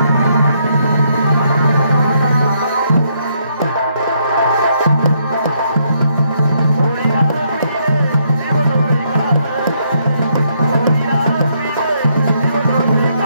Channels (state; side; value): inverted; both; correlation -0.73